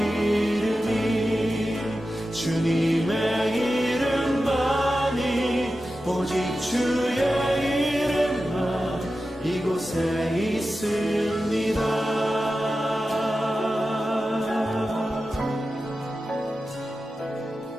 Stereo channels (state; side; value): normal; both; correlation 0.93